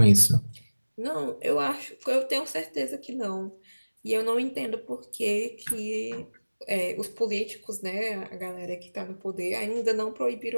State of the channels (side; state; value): both; inverted; correlation -1.00